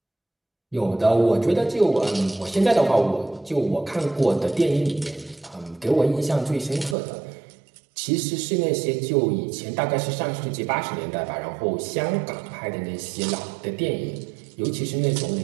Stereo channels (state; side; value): drops out; left; at 7.0 s